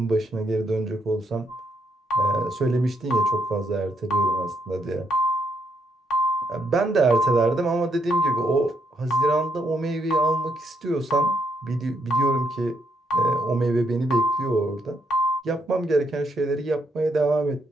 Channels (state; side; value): normal; both; correlation 0.75